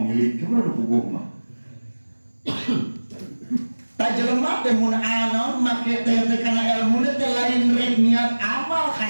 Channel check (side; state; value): both; inverted; correlation -1.00